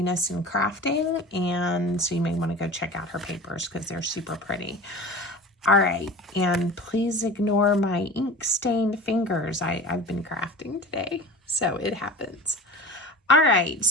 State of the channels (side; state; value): both; normal; correlation 0.36